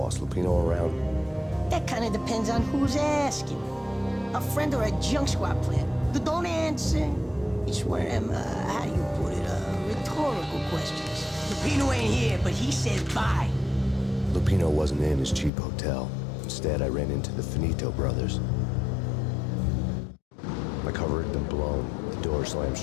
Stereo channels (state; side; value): drops out; right; at 15.5 s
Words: Lupino around? That kind of depends on who's asking. A friend or a junk squad player. Don't answer. It's one of them, how do you put it, rhetorical questions. Lupino ain't here, but he said bye. Lupino wasn't in his cheap hotel. Instead, I ran into the Finito brothers. My cover had been blown. The door slammed